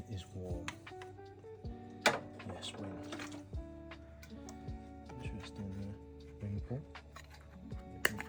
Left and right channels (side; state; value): both; identical; correlation 1.00